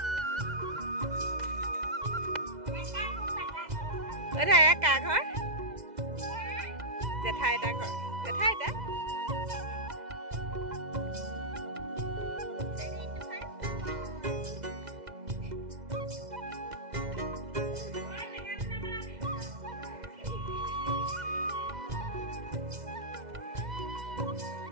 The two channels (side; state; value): left; late; 2.0 ms